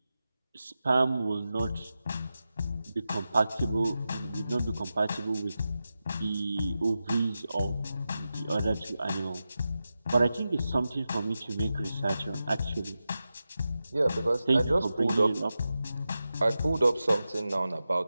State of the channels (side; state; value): both; inverted; correlation -0.92